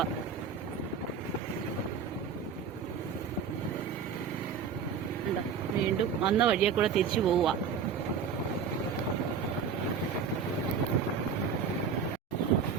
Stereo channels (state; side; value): quieter; left; 6.3 dB